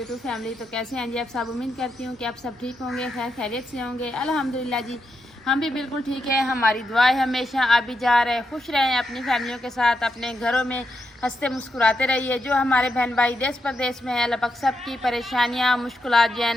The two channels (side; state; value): both; normal; correlation 0.84